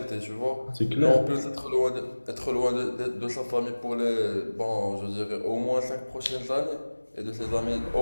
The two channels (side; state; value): both; inverted; correlation -1.00